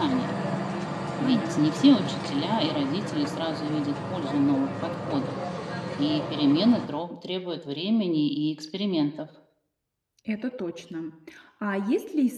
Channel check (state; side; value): identical; both; correlation 1.00